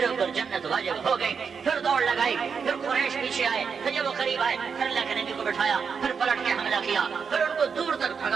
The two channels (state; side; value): quieter; left; 6.1 dB